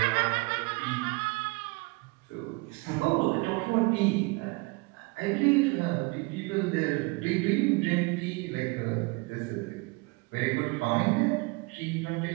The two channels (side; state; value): left; quieter; 26.6 dB